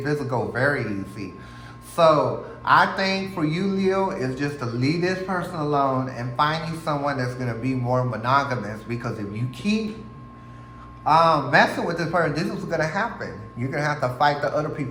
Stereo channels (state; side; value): identical; both; correlation 1.00